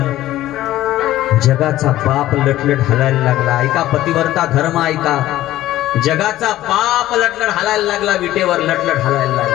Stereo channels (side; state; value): right; quieter; 14.7 dB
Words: जगाचा बाप लटलट हलायला लागला. ऐका पतिव्रता धर्म, ऐका. जगाचा बाप लटलट हलायला लागला. विटेवर लटलट हलायला